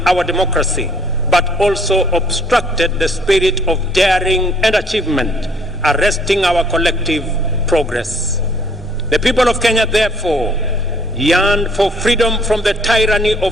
our democracy, but also obstructed the spirit of daring and achievement, arresting our collective progress. The people of Kenya, therefore, yearned for freedom from the tyranny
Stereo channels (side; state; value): both; normal; correlation 0.61